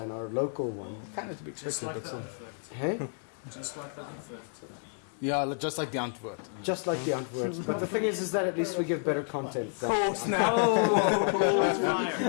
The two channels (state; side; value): silent; right; 58 dB below the other